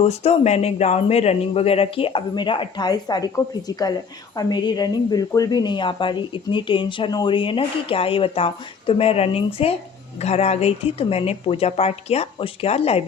मैंने ग्राउंड में रनिंग वगैरह की। अभी मेरा 28 तारीख को फिजिकल है और मेरी रनिंग बिल्कुल भी नहीं आ पा रही। इतनी टेंशन हो रही है ना कि क्या ही बताऊं। तो मैं रनिंग से घर आ गई थी, तो मैंने पूजा पाठ किया। उसके बाद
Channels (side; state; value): right; quieter; 5.9 dB